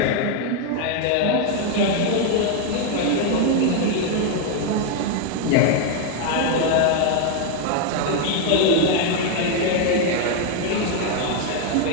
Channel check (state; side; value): different; both; correlation 0.00